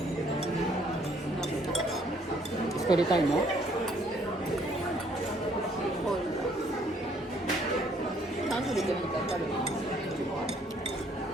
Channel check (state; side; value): normal; both; correlation 0.64